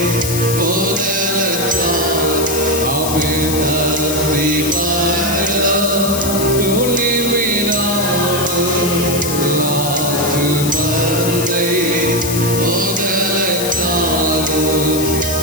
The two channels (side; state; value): left; noise; hiss, 5 dB below the sound